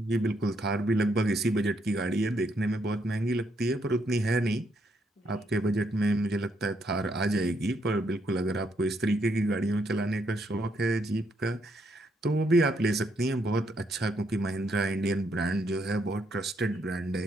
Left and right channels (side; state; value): both; normal; correlation 0.75